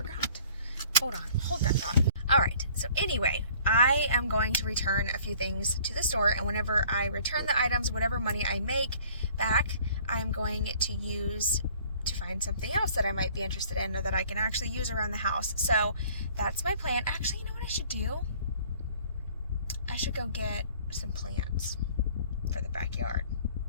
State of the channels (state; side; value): inverted; both; correlation -0.53